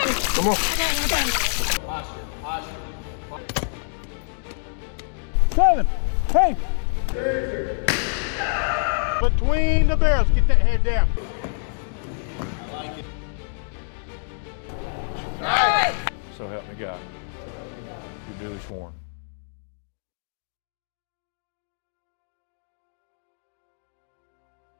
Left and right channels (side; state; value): right; silent; digital silence